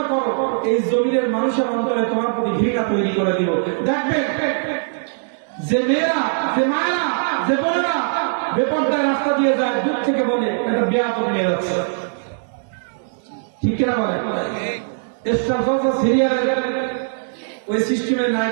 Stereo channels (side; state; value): left; silent; digital silence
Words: করো, এই জমিনের মানুষের অন্তরে তোমার প্রতি ঘৃণা তৈরি করে দিব। দেখবেন যে মেয়েরা, যে মায়েরা, যে বোনেরা বেপরদায় রাস্তা দিয়ে যায়, দূর থেকে বলে এটা বেয়াদব নিয়ে যাচ্ছে, ঠিক কিনা বলে? স্টার জলসা সিরিয়ালের ওই সিস্টেমের